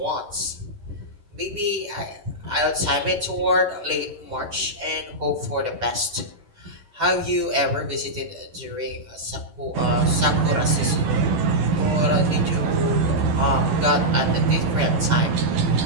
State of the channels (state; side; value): late; left; 11 ms